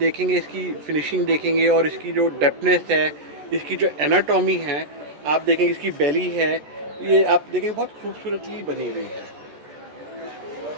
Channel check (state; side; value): late; left; 14 ms